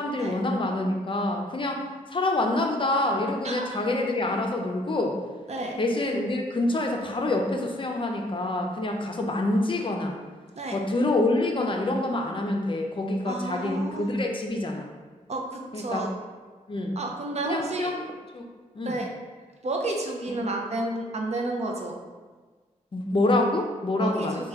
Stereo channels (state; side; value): normal; both; correlation 0.62